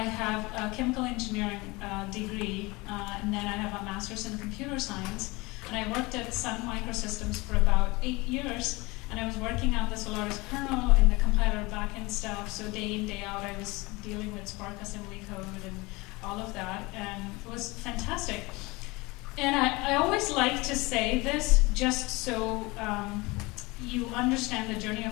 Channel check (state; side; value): quieter; right; 23.8 dB